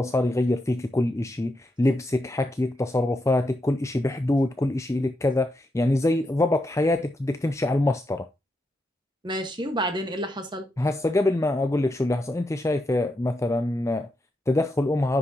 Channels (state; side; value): normal; both; correlation 0.83